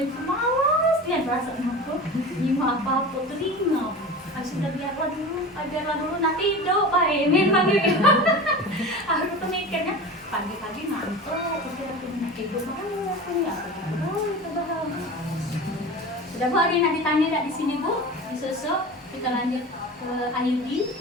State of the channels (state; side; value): normal; both; correlation 0.32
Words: itu malas dia perasaan aku ini apa-apa telinga sudah biarlah dulu nanti hidup baik memang gitu aku tuh mikirnya pagi-pagi ngantuk aku hidup malu aku ya itu bahaya. Sudah Bu, ada yang nak ditanya tak di sini Bu? Di sosok kita lanjut ke Ayudi.